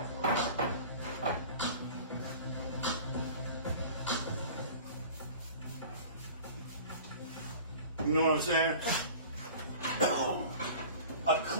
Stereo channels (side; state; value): both; inverted; correlation -0.41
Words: You know what I'm saying? A